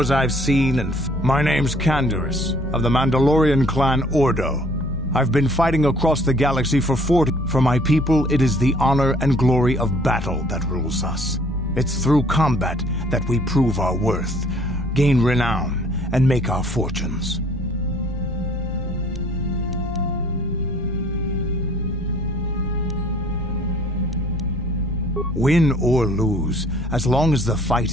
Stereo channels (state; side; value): normal; both; correlation 0.57